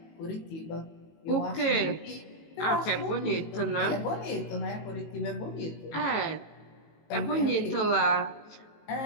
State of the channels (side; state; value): right; late; 18 ms